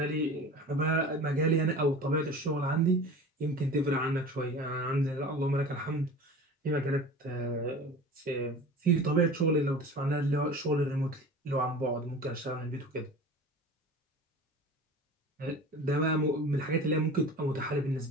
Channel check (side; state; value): both; normal; correlation 0.37